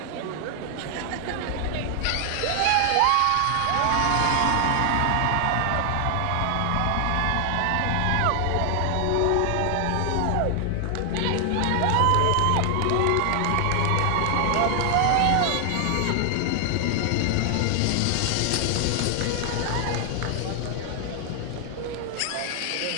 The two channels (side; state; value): both; different; correlation 0.00